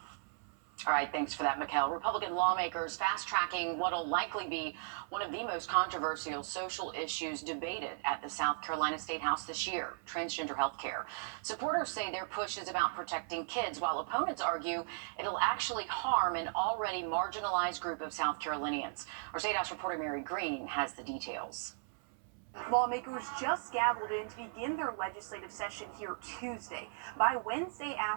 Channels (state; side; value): silent; left; 53 dB below the other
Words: All right, thanks for that, Mikkel. Republican lawmakers fast-tracking what'll likely be one of the most controversial social issues debated at the South Carolina State House this year, transgender health care. Supporters say their push is about protecting kids, while opponents argue it'll actually harm an already marginalized group of South Carolinians. Our State House reporter Mary Green has the details. Lawmakers just gavelled in to begin their legislative session here Tuesday. By Wednesday